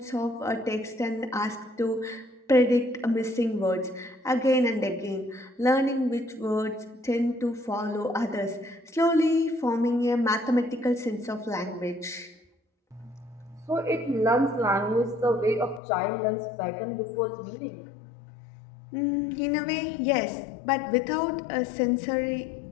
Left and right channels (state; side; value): drops out; right; at 15.8 s